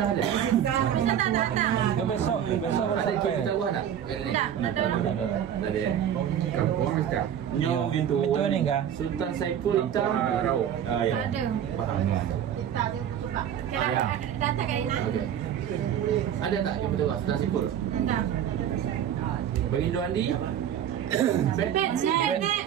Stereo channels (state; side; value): quieter; left; 9.7 dB